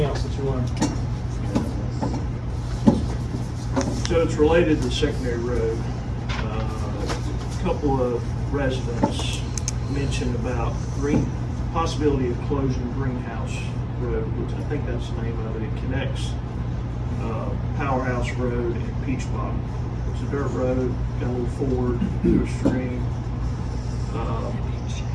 else that you want. So it's related to secondary road. A couple of residents mentioned about possibility of closing Greenhouse Road, which I think that's the name of it. It connects Powerhouse Road and Peach Bottom. It's a dirt road, got a little ford to a stream.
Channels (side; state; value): both; identical; correlation 1.00